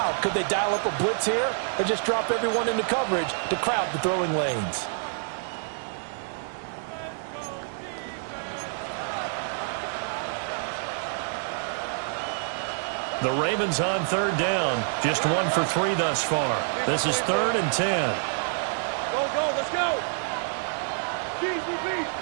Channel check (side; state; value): left; silent; digital silence